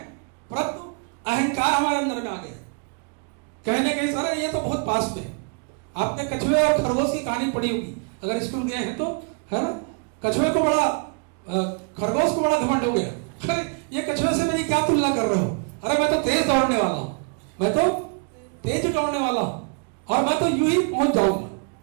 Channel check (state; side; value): quieter; left; 38.5 dB